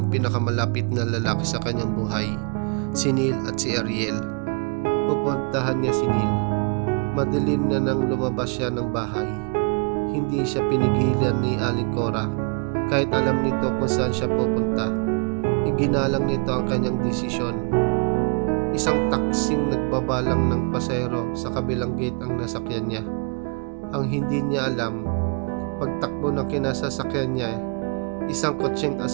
pinakamalapit na lalaki sa kanyang buhay, si Neil at si Ariel. Pupuntahan niya si Neil. Madilim na nang lumabas siya ng bahay. Hindi siya pinigilan ni Aling Cora kahit alam nito kung saan siya pupunta. Iginalang nito ang kanyang desisyon. Isang taksing nagbabalang ng pasahero sa kabilang gate ang nasakyan niya. Ang hindi niya alam, pagtakbo ng kinasasakyan niya, isang kotseng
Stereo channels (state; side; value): quieter; left; 36.8 dB